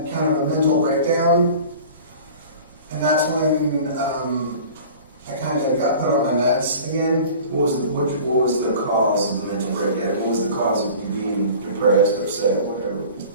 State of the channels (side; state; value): both; inverted; correlation -0.42